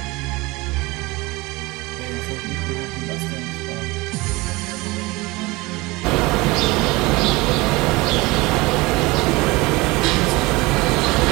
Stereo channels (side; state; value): left; quieter; 22.7 dB